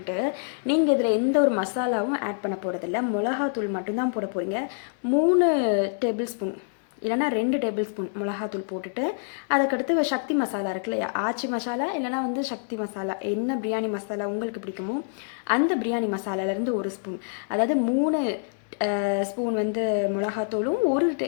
நீங்கள் இதில் எந்த ஒரு மசாலாவும் ஆட் பண்ண போகிறதில்ல. மிளகாத்தூள் மட்டும்தான் போட போகிறீங்க. 3 டேபிள் ஸ்பூன் இல்லைனா 2 டேபிள் ஸ்பூன் மிளகாத்தூள் போட்டுட்டு அதுக்கடுத்து சக்தி மசாலா இருக்கு இல்லையா, ஆச்சி மசாலா இல்லைனா வந்து சக்தி மசாலா, என்ன பிரியாணி மசாலா உங்களுக்கு பிடிக்குமோ அந்த பிரியாணி மசாலாலேருந்து 1 ஸ்பூன், அதாவது 3 ஸ்பூன் வந்து மிளகாத்தூளும் 1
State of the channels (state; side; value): silent; right; digital silence